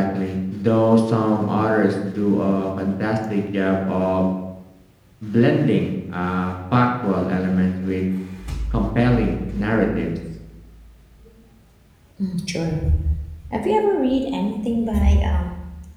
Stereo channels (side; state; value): both; identical; correlation 1.00